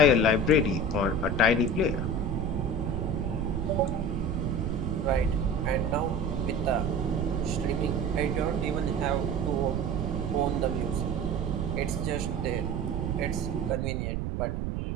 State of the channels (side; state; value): right; noise; rumble, 1 dB below the sound